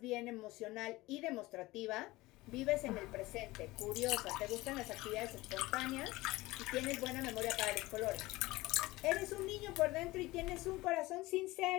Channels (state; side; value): quieter; right; 19.8 dB